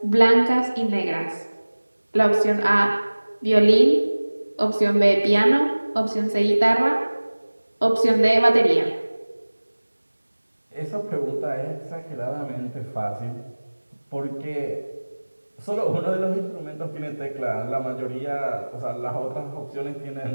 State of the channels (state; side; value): inverted; both; correlation -1.00